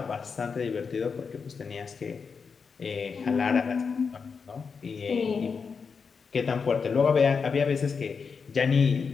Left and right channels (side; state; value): right; quieter; 5.5 dB